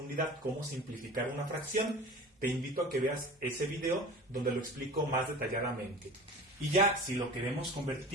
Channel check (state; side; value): normal; both; correlation 0.38